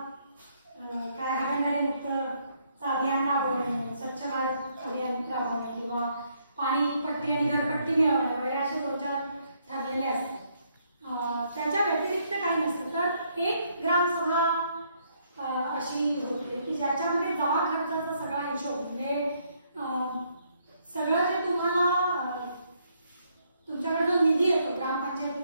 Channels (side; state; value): both; inverted; correlation -0.71